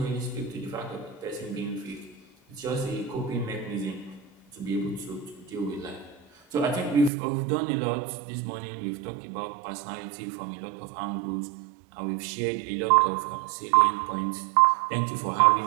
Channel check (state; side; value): drops out; left; at 7.1 s